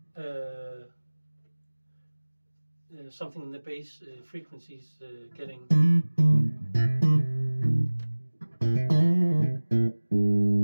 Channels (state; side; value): inverted; both; correlation -1.00